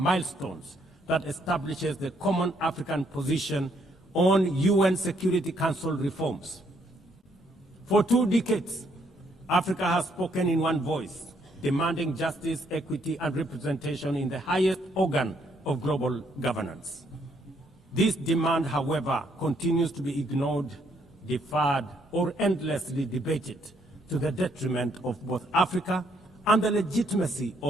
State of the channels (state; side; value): normal; both; correlation 0.71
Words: that establishes the common African position on UN Security Council reforms. For 2 decades, Africa has spoken in one voice, demanding justice, equity, and representation in the highest organ of global governance. This demand, however, continues to be ignored, deferred, or endlessly debated to the detriment of both Africa and the legitimacy